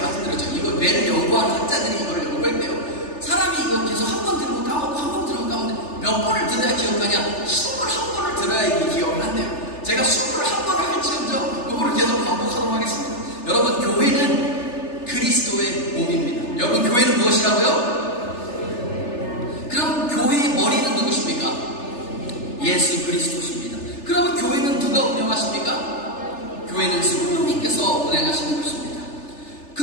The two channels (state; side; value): late; right; 3.4 ms